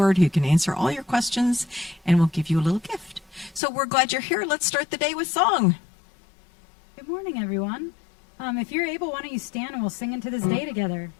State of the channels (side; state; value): right; drops out; at 3.6 s